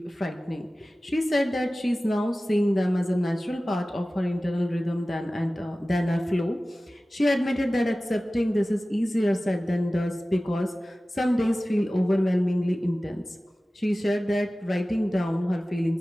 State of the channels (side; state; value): both; normal; correlation 0.97